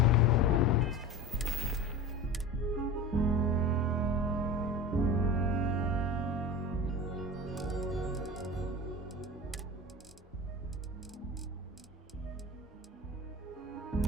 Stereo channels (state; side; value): normal; both; correlation 0.32